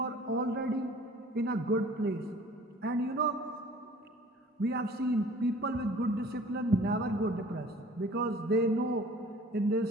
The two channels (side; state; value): both; normal; correlation 0.49